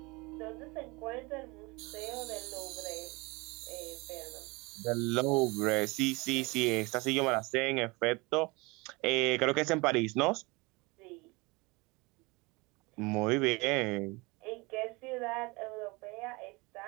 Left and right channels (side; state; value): left; quieter; 25.5 dB